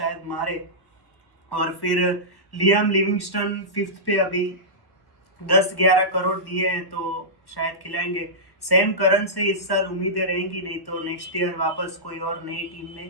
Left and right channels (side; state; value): right; late; 1.1 ms